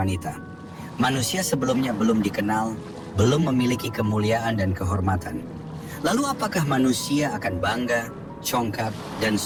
Manusia sebelumnya belum dikenal, belum memiliki kemuliaan dan kehormatan. Lalu apakah manusia akan bangga, congkak, dan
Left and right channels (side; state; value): both; identical; correlation 1.00